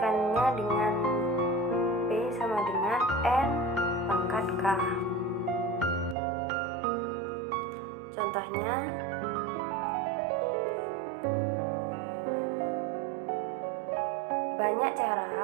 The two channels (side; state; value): left; drops out; at 6.2 s